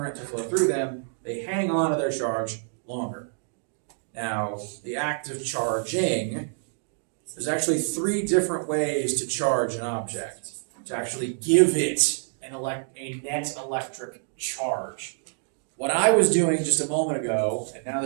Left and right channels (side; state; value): left; silent; digital silence